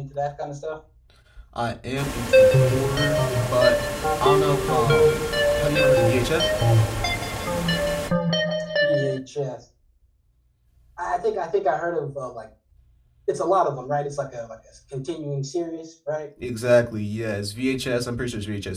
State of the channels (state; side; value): identical; both; correlation 1.00